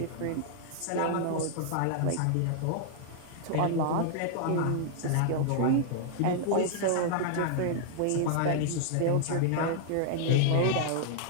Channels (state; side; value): different; both; correlation -0.01